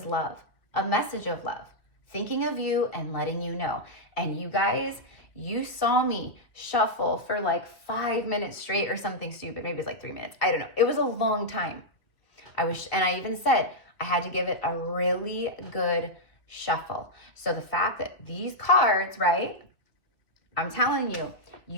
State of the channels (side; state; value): right; late; 2.3 ms